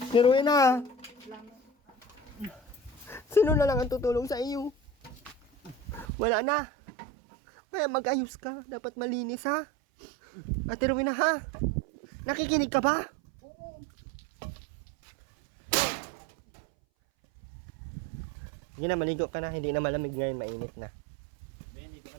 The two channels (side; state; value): left; drops out; at 6.1 s